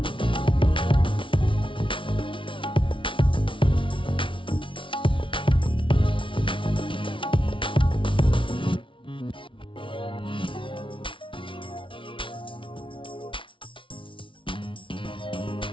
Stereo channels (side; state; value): right; late; 0.25 ms